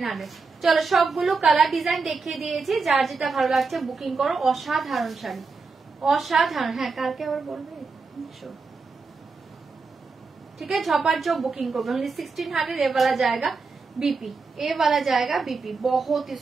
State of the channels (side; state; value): left; quieter; 4.4 dB